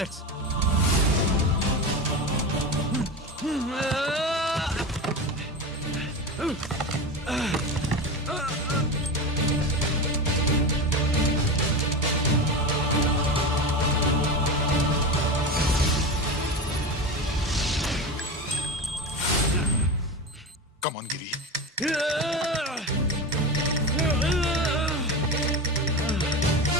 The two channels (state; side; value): normal; both; correlation 0.23